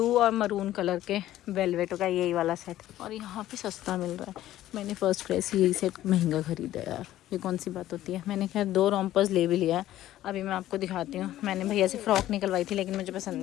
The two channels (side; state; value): right; quieter; 13.8 dB